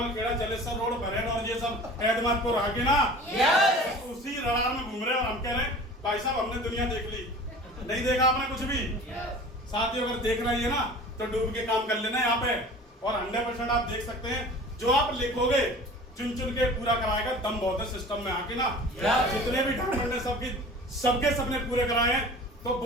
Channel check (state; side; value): normal; both; correlation 0.42